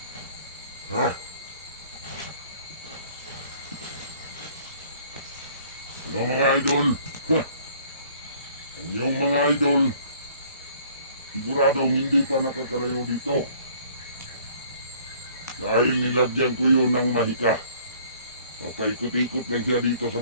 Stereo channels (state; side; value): inverted; both; correlation -0.56